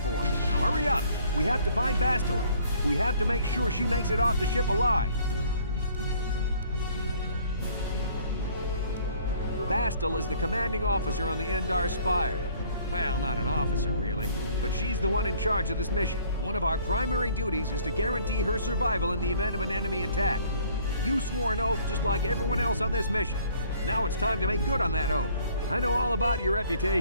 Now hurry up! We have to find Bastila. We have to make sure she makes it off the ship alive. Bastila is the commanding officer on the Endar Spire. Well, not an officer, really, but she's the one in charge of this mission. One of our primary duties is to guarantee her survival in the event of an enemy attack. You swore an oath just like everyone else on this mission. Now it's time to make good on that oath. I know all about your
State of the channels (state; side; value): inverted; both; correlation -0.58